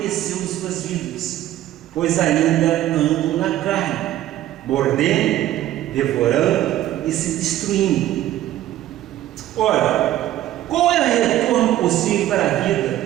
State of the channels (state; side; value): quieter; left; 13.6 dB